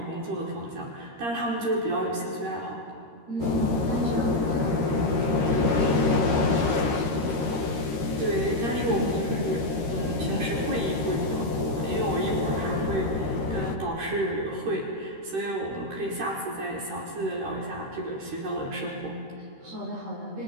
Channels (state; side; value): late; left; 13 ms